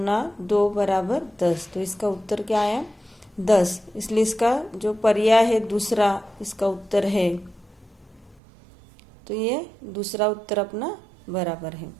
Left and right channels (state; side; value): drops out; left; at 8.4 s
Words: 2 बराबर 10। तो इसका उत्तर क्या आया 10। इसलिए इसका जो पर्याय है दूसरा इसका उत्तर है। तो ये दूसरा उत्तर अपना बराबर है।